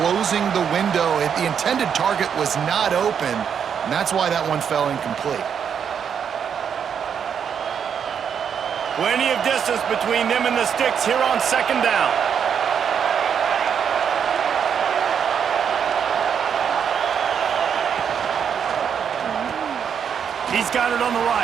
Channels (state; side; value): quieter; left; 7.6 dB